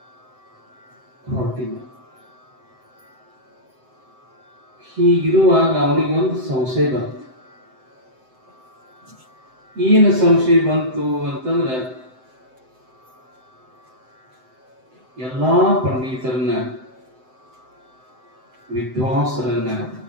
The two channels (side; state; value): left; late; 7.8 ms